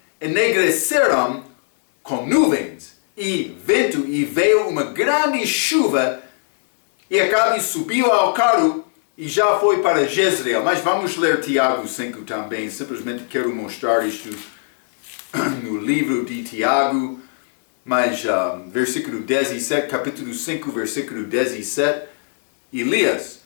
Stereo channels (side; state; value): right; silent; digital silence